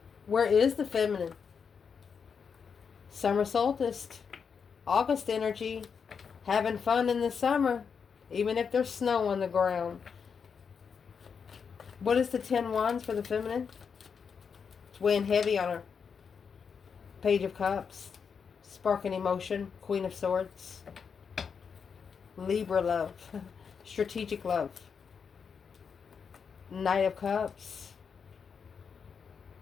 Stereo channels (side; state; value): right; quieter; 6.3 dB